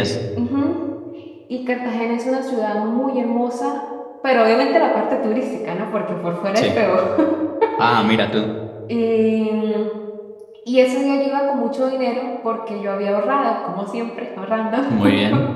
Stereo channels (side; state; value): both; identical; correlation 1.00